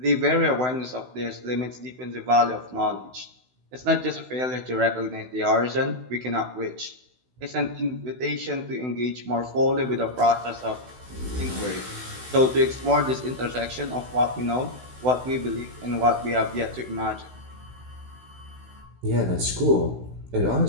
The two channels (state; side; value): late; left; 16 ms